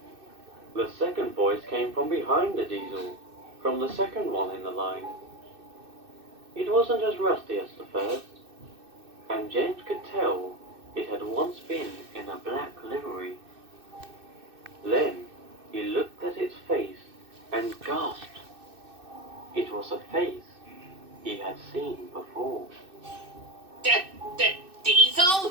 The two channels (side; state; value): left; late; 2.6 ms